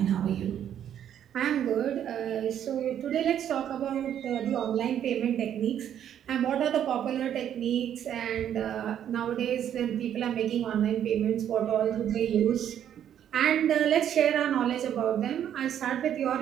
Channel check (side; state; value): left; quieter; 9.9 dB